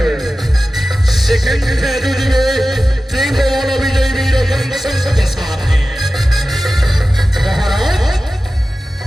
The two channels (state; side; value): normal; both; correlation 0.95